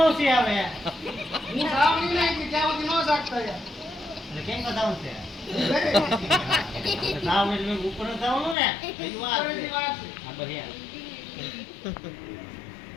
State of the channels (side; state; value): right; drops out; at 8.6 s